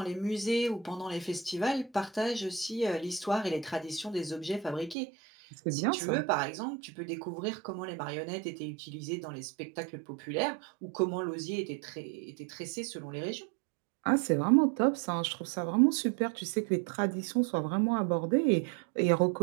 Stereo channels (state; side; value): drops out; left; at 5.0 s